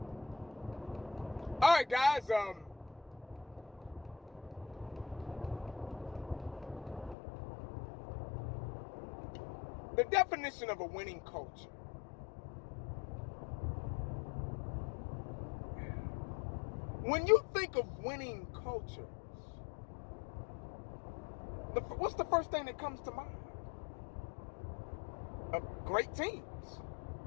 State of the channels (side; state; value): right; drops out; at 7.2 s